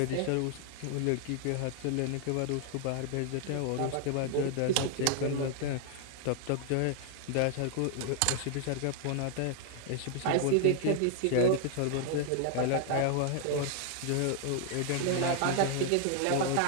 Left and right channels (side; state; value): both; different; correlation 0.00